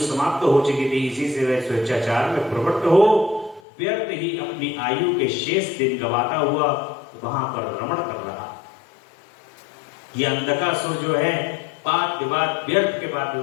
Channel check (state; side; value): drops out; right; at 3.6 s